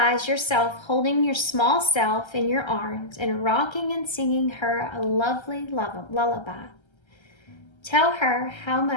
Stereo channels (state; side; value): late; right; 1.3 ms